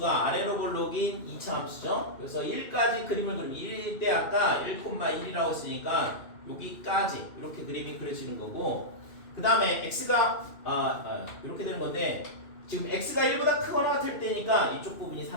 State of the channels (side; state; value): right; late; 2.6 ms